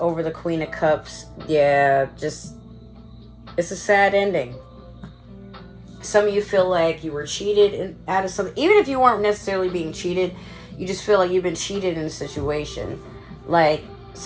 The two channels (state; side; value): identical; both; correlation 1.00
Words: the Queen of Cups, yeah, just... it's a sad ending. Some of you feel like you were cheated out of something. Even if you weren't necessarily being cheated, you just feel like you've been cheated in a situation. Like